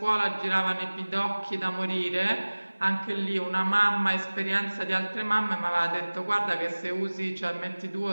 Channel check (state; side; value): inverted; both; correlation -1.00